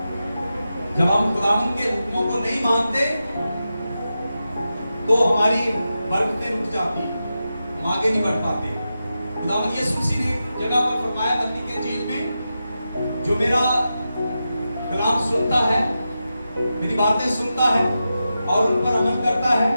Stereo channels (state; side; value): inverted; both; correlation -0.90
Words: जब हम खुदावंद के हुक्मों को नहीं मानते तो हमारी बरकतें रुक जाती हैं, हम आगे नहीं बढ़ पाते। खुदावंद यीशु मसीह ने जगह पर फरमाया मत्ती के इंजील में, जो मेरा कलाम सुनता है, मेरी बातें सुनता है और उन पर अमल करता है,